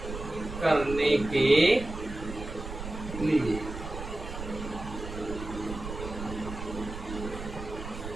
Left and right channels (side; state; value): right; noise; rumble, 9 dB below the sound